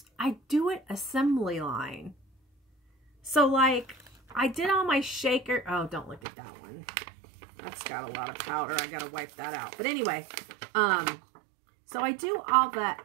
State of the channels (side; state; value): left; drops out; at 6.2 s